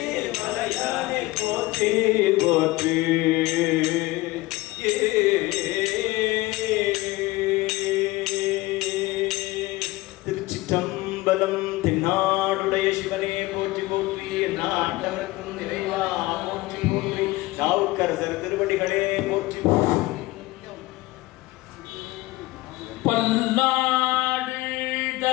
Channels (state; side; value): quieter; right; 19.8 dB